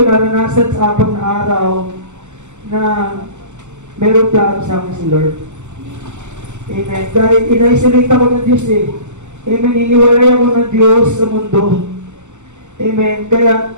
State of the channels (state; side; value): late; left; 0.84 ms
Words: naranasan sa 4 na araw, na meron plano sa akin si Lord. Amen. Dahil in-isolate ako ng Diyos eh. Amen. Iniwalay ako ng Diyos sa mundo. Amen. Kaya